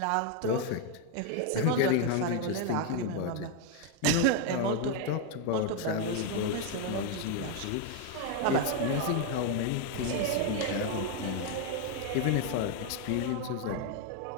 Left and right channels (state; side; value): different; both; correlation 0.01